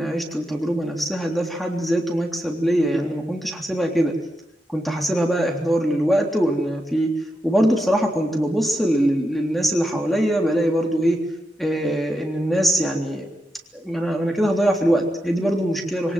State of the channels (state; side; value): normal; both; correlation 0.86